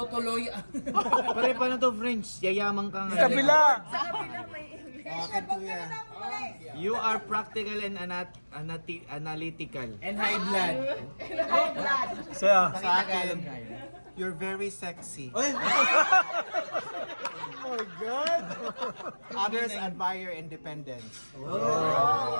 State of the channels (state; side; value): inverted; both; correlation -1.00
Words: Pare, paano to French? Yayaman ka nga. Kabila. Akin to yan. You are practical and analytical. And high blood. Siya. Sa akin, you're very sexy. Oh my God! Others admire independence.